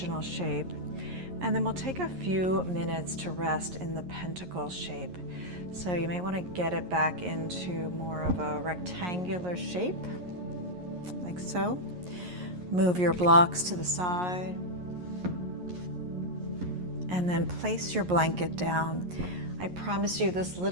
shape. And then we'll take a few minutes to rest in the pentacle shape. So you may want to get it back into more of a rectangular shape. like so. Move your blocks to the side. And then place your blanket down. I promise you this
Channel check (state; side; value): late; left; 11 ms